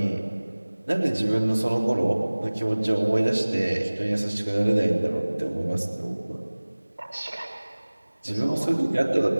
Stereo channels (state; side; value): inverted; both; correlation -1.00